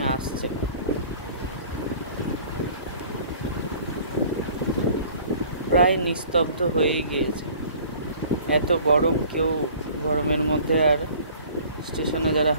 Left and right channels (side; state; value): both; inverted; correlation -0.50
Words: আসছে। প্রায় নিস্তব্ধ হয়েই গিয়েছে। এত গরম, কেউ গরমের মধ্যে আর স্টেশনে যারা